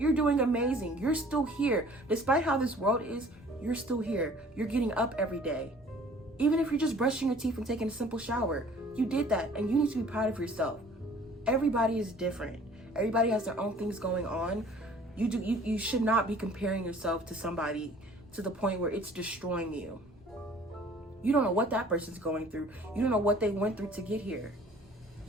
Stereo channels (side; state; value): both; normal; correlation 0.52